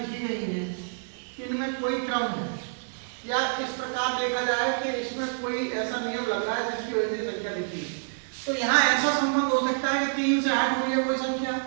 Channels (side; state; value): left; silent; digital silence